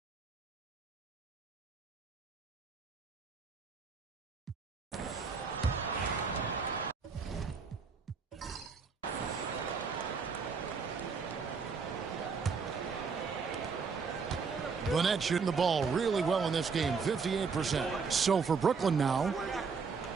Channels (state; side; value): quieter; left; 5.3 dB